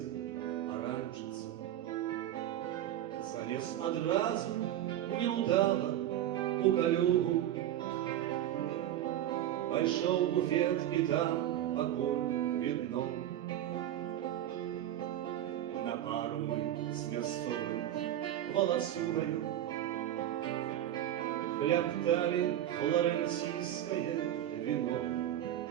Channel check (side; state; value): left; quieter; 12.1 dB